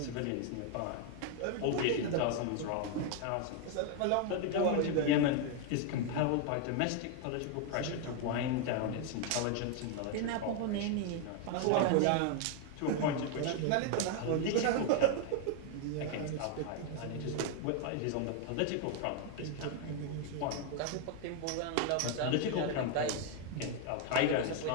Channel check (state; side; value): different; both; correlation 0.01